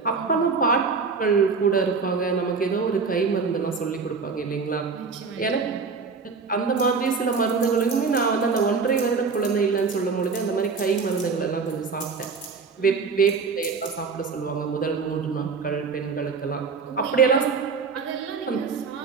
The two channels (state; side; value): quieter; left; 5.0 dB